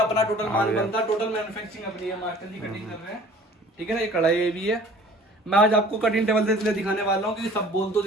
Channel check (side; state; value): both; normal; correlation 0.49